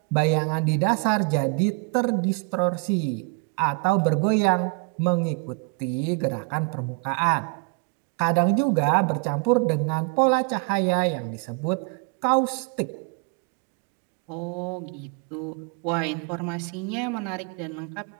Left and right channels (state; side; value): quieter; left; 33.2 dB